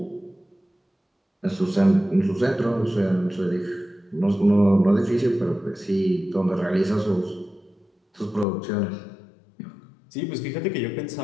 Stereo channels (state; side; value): drops out; right; at 8.5 s